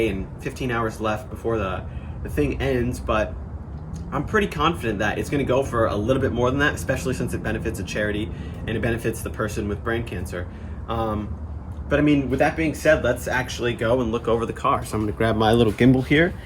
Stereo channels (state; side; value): identical; both; correlation 1.00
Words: and 15 hours left before the thing ends, but I'm pretty confident that it's gonna go for a little bit more than that, especially since it benefits a charity and it benefits the person with brain cancer. But I mean, with that being said, let's actually go and look over the car. So I'm gonna grab my little gimbal here